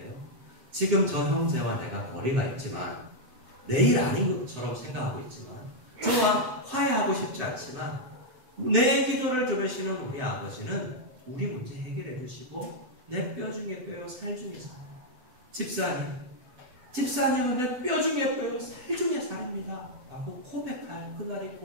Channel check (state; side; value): late; left; 7.8 ms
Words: 지금 저 형제와 내가 거리가 있지만 내일 아닌 것처럼 생각하고 있지만 저와 화해하고 싶지 않지만 내 기도를 들으시는 우리 아버지는 우리 문제 해결해 주시고 내 뼈 중에 뼈요 살 중에 살아요. 집사님은 내 뼈 중에 뼈요 살 중에 살입니다 라고 고백할 그날이